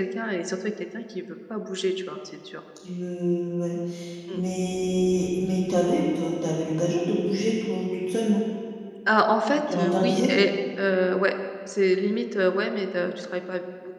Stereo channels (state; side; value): identical; both; correlation 1.00